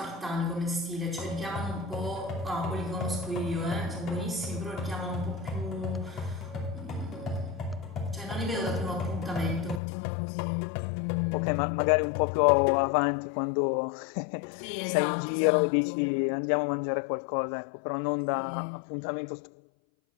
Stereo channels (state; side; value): drops out; right; at 9.8 s